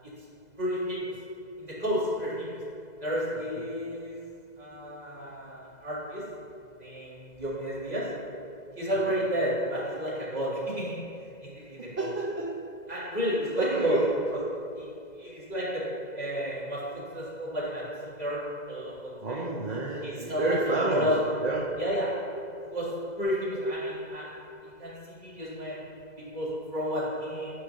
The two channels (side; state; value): right; late; 2.0 ms